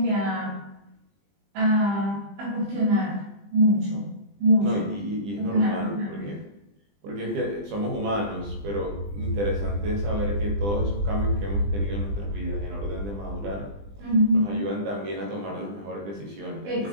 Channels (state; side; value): late; left; 20 ms